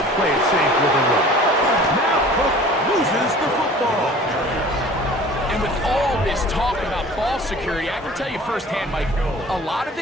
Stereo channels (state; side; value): normal; both; correlation 0.45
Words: play it safe with a run. Now Cook loses the football. And with all this talk about ball security, I can tell you firsthand, Mike, a lot of